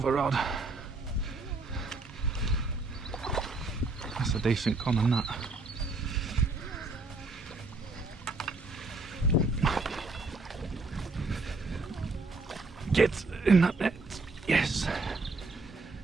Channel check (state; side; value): quieter; left; 3.3 dB